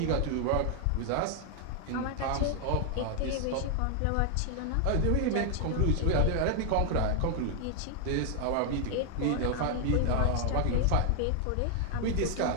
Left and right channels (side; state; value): both; different; correlation 0.00